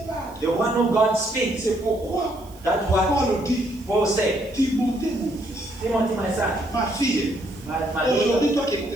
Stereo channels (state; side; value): noise; right; hiss, 25 dB below the sound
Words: parle. the one who God speaks, C'est pourquoi that's what Paul dit, Paul said. Timothée mon fils, Timothy, my son, ma fille, my daughter, aujourd'hui toi qui